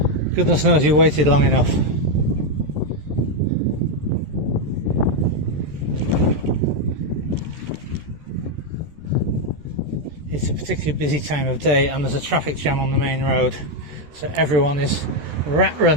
Goodness knows you waited long enough. It's a particularly busy time of day and there's a traffic jam on the main road, so everyone is rat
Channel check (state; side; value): late; left; 13 ms